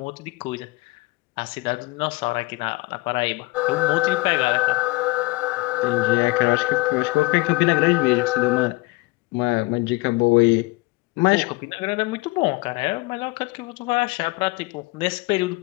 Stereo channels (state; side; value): quieter; right; 23.3 dB